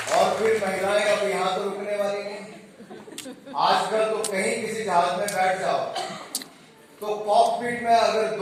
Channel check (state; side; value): identical; both; correlation 1.00